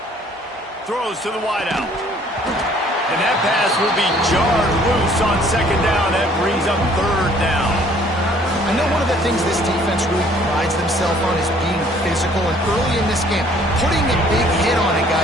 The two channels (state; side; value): normal; both; correlation 0.58